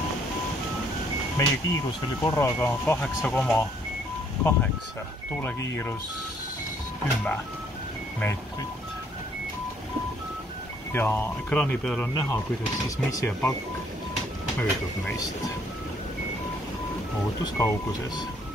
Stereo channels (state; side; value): normal; both; correlation 0.65